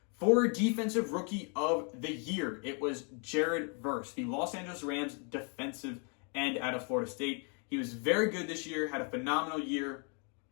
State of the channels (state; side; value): quieter; right; 38.2 dB